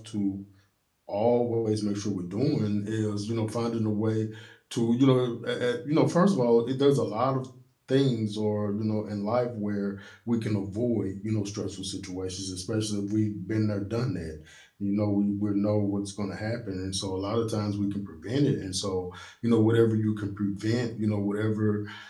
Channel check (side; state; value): both; identical; correlation 1.00